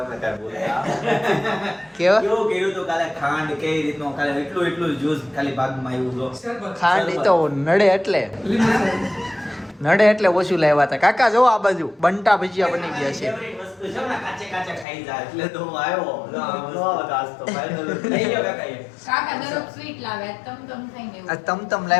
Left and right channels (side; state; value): right; drops out; at 14.9 s